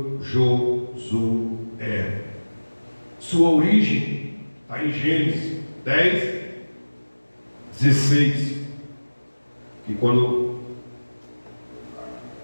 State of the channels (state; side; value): inverted; both; correlation -1.00